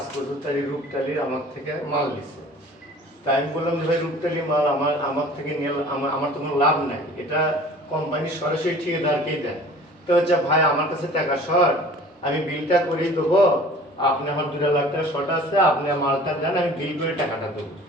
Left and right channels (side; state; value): both; normal; correlation 0.46